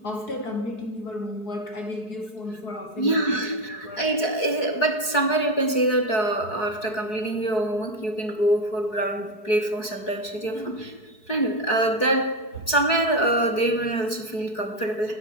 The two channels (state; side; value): late; right; 4.7 ms